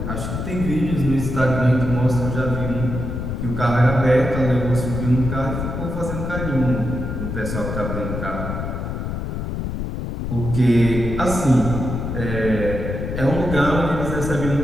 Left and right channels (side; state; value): left; noise; rumble, 4 dB below the sound